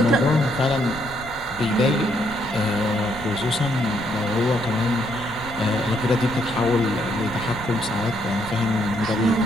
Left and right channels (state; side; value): noise; left; rumble, 18 dB below the sound